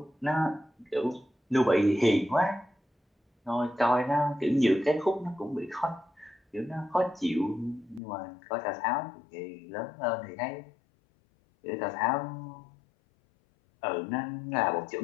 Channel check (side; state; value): right; drops out; at 8.0 s